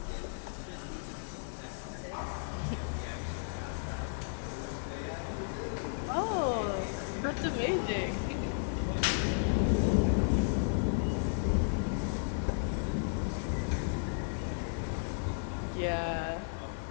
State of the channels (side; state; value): right; silent; 55 dB below the other